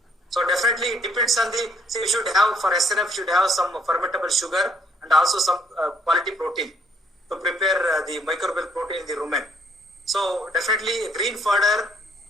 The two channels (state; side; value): normal; both; correlation 0.66